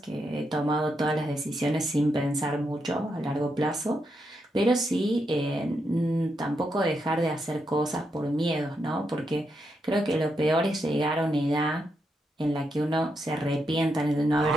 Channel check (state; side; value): normal; both; correlation 0.82